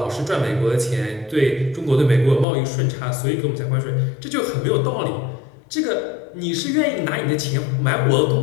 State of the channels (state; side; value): drops out; right; at 2.5 s